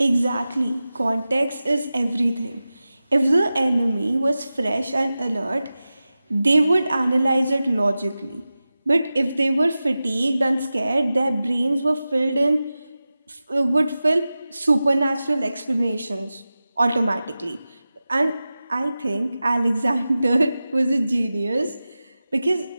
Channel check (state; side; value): inverted; both; correlation -0.95